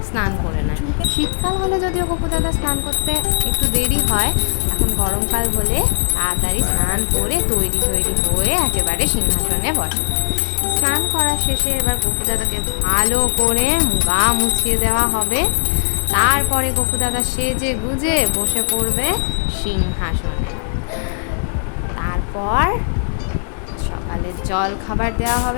স্নান করে না। শীতকাল হলে যদিও গপু দাদা স্নান করতে একটু দেরি হয়, এখন গরমকাল বলে তাড়াতাড়ি স্নান করে তৈরি হয়ে একেবারে সিংহাসনে বসে। স্নান করা শেষে এবার গপু দাদাকে ভালো করে গা মুছিয়ে দেওয়া হবে। তারপরে গপু দাদা সেজে গুজে বসে পড়বে সিংহাসনে। তারপর সকালে জল খাবার দেওয়া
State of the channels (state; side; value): silent; right; digital silence